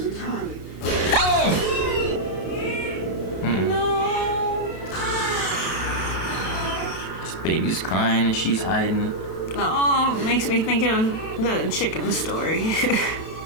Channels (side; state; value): right; late; 32 ms